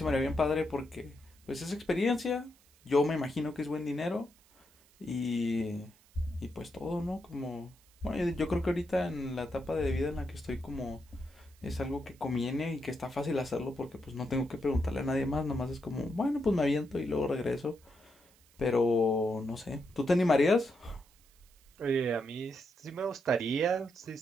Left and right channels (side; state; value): right; noise; hiss, 29 dB below the sound